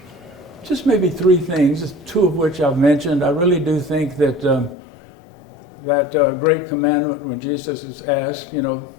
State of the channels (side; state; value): right; drops out; at 4.8 s